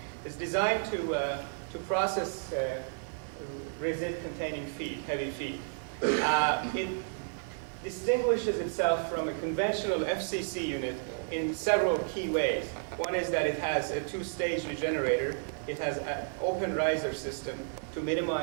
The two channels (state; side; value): silent; left; digital silence